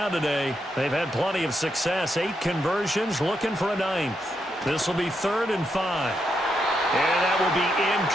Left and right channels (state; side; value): normal; both; correlation 0.81